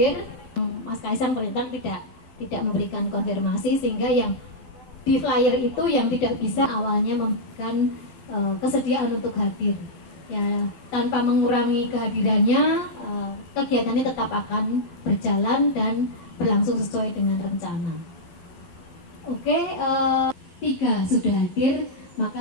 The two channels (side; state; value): right; late; 12 ms